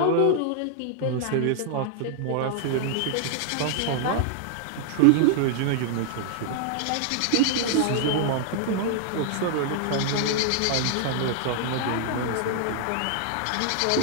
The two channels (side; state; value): both; different; correlation -0.01